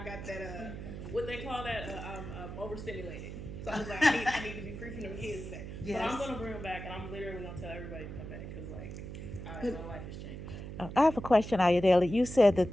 got that what they call that I'm overstimulated. So I was like, I need to be free from them kids today. Yes. But I'm gonna bring them back, and I'm literally gonna tell everybody to come back because like my life has changed. I have a question, Ayodele. You said that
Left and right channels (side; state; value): right; noise; hum, 9 dB below the sound